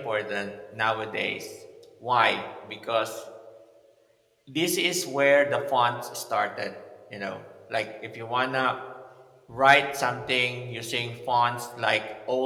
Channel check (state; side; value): identical; both; correlation 1.00